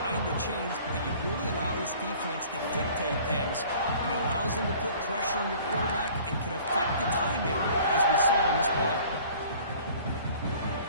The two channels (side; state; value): both; inverted; correlation -0.50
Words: the chains, you really allow this defense to dictate things, and it allows them to put pressure on your quarterback and can affect the timing, as we saw in this play.